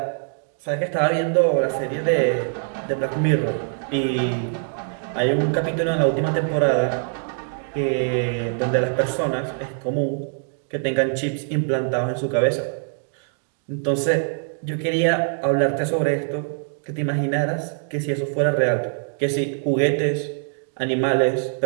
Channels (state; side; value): silent; left; digital silence